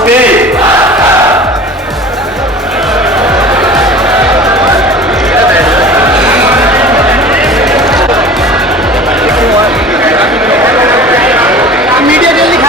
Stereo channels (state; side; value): normal; both; correlation 0.40